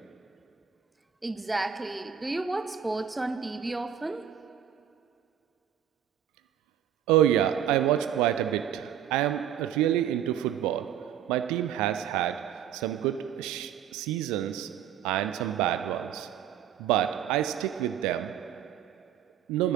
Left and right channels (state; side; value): quieter; left; 9.6 dB